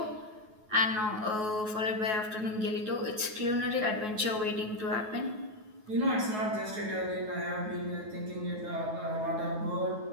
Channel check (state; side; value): late; left; 9.4 ms